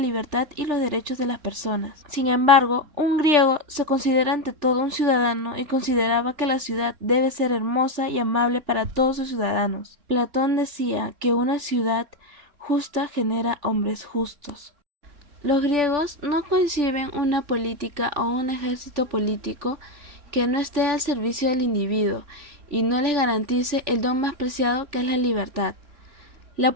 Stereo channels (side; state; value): left; late; 3.4 ms